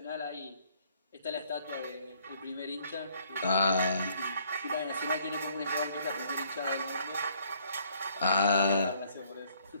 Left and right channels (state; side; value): inverted; both; correlation -0.64